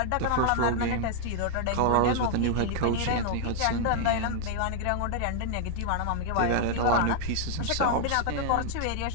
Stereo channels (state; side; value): different; both; correlation -0.01